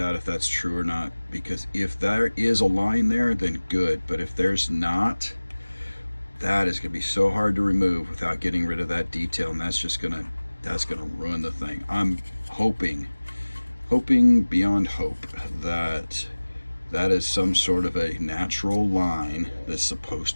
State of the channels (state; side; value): inverted; both; correlation -1.00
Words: if that's true or not, because if there is a line there, then good. But if there's not, that is going to be so hard to remove without getting rid of that detail, and that's gonna ruin the thing. I'm hoping beyond hope that that is some sort of a natural line that's supposed